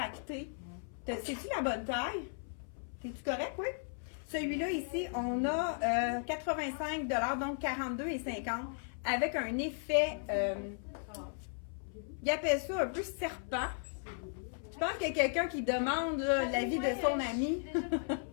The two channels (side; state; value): right; silent; 54 dB below the other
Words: C'est-tu la bonne taille? C'est-tu correct, oui? Celui-là, ici, on a 85 $, donc 42,50 $, avec un effet, il appelle ça un peu serpent. Je pense qu'il y a quelqu'un qui demande l'avis de son ami.